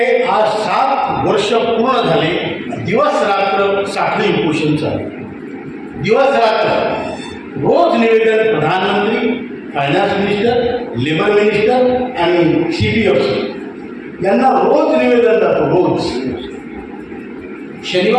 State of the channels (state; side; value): identical; both; correlation 1.00